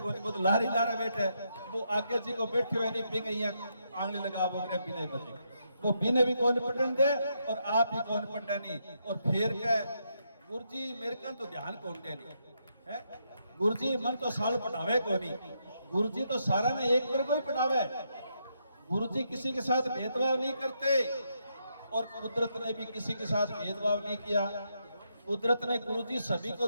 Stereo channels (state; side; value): inverted; both; correlation -0.79